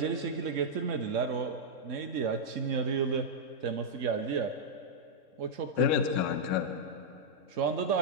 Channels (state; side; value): late; left; 3.6 ms